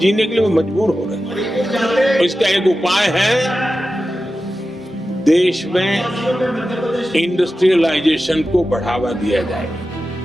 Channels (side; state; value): both; normal; correlation 0.93